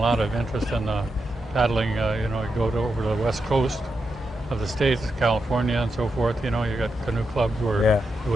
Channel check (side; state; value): both; normal; correlation 0.86